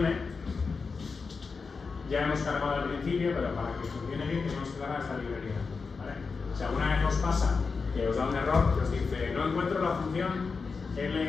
ya hemos cargado al principio, pero para que funcione bien tenemos que cargar esta librería, ¿vale? Si alguna vez os pasa que os da un error que os dice no encuentro la función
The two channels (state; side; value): quieter; right; 4.8 dB